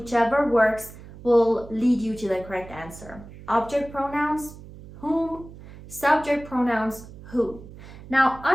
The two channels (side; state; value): right; noise; hum, 17 dB below the sound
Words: works will lead you to the correct answer. Object pronouns, whom. Subject pronouns, who. Now,